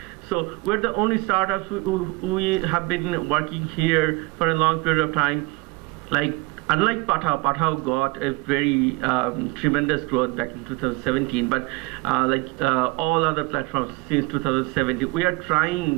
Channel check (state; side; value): quieter; left; 24.7 dB